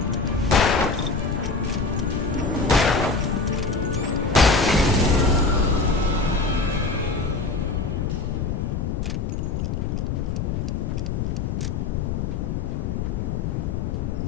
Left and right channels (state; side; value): noise; left; rumble, 1 dB below the sound